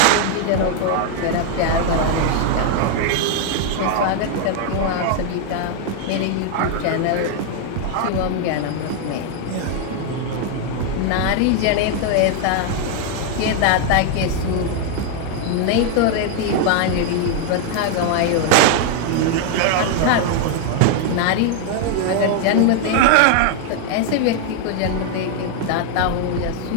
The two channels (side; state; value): both; different; correlation 0.00